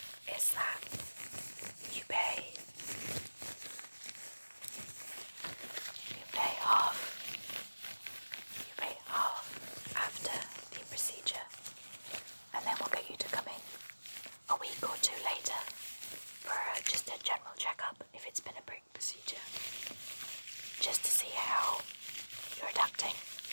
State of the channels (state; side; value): inverted; both; correlation -1.00